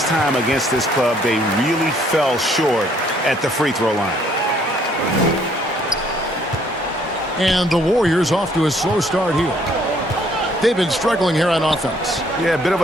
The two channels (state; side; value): normal; both; correlation 0.64